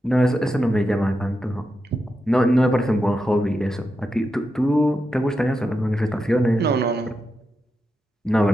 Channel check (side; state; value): both; normal; correlation 0.87